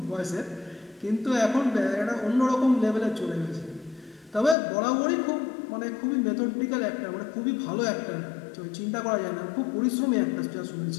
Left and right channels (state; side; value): drops out; right; at 4.5 s